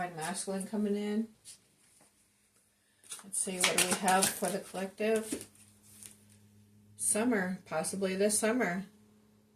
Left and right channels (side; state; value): both; identical; correlation 1.00